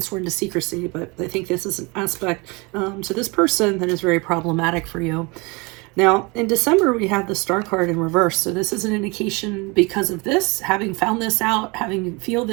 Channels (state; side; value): quieter; left; 27.3 dB